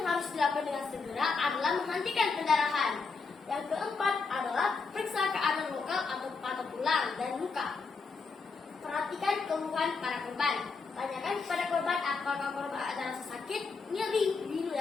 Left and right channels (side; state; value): right; quieter; 4.6 dB